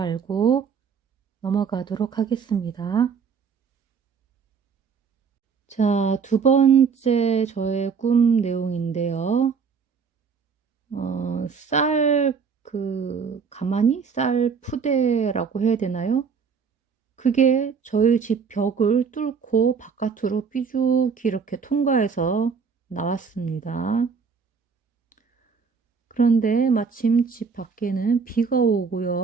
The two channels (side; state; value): left; quieter; 5.9 dB